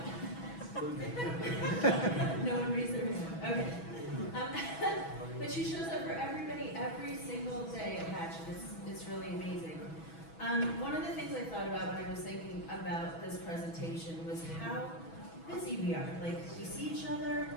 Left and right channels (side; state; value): right; late; 6.1 ms